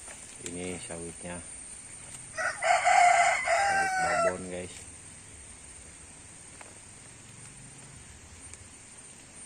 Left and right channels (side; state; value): both; identical; correlation 1.00